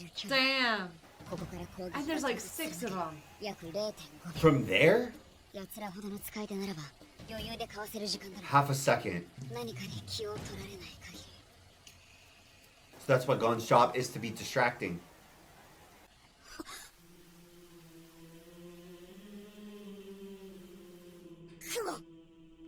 距離。 Damn. ここから攻撃 And there's like 6 of them. 約 0.5 秒。 From there? 奴らほどの使い手ならば、余裕でかわせる時間だろう。 Half a second. 何かに気を取られない限り。 So that's what Gon's job is, to be distracting. 雲。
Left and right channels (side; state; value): both; identical; correlation 1.00